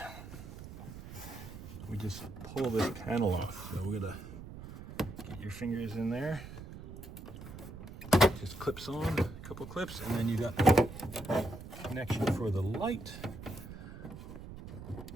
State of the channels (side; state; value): right; noise; rumble, 12 dB below the sound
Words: we just pull this panel off. So we're gonna get your fingers in there. Just clips on, a couple clips, and then you got the connection for the light.